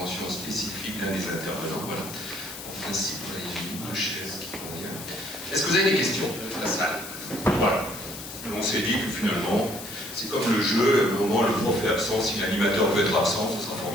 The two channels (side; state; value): left; noise; hiss, 11 dB below the sound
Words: spécifique d'un des intervenants? Voilà. En principe, il y a une ou deux chaises qui convient. Est-ce que vous avez des questions dans la salle? Voilà. On s'est dit que finalement, c'est comme le jeu, au moment où le prof est absent, si l'animateur peut être absent, ce sera